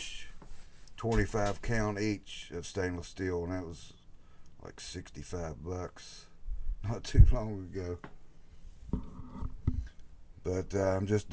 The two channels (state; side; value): identical; both; correlation 1.00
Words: 25 count each of stainless steel, and that was like $65 not too long ago. But I'm just